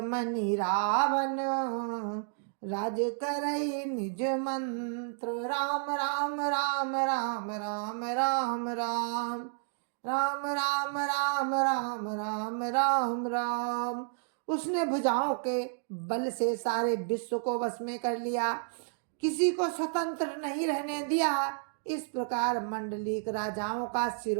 मणि रावण, राज करई निज मंत्र। राम राम राम राम राम राम राम राम राम राम राम राम राम राम। उसने भुजाओं के बल से सारे विश्व को वश में कर लिया, किसी को स्वतंत्र नहीं रहने दिया। इस प्रकार मंडलीक राजाओं का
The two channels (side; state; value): left; silent; digital silence